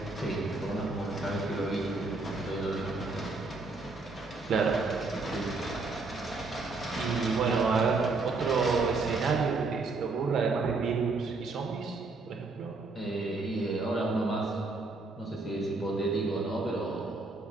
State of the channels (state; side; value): quieter; left; 3.6 dB